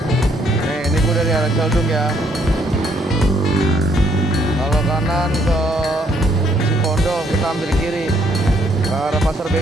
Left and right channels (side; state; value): both; normal; correlation 0.69